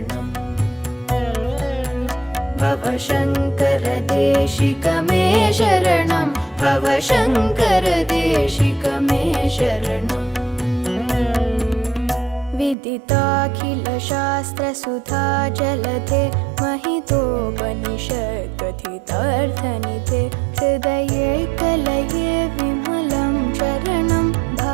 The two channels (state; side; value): drops out; left; at 12.8 s